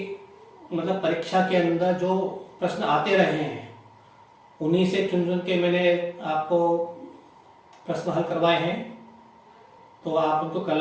मतलब परीक्षा के अंदर जो प्रश्न आते रहे हैं उन्हीं से चुन चुन के मैंने आपको प्रश्न हल करवाए हैं, तो आप उनको कर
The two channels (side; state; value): both; identical; correlation 1.00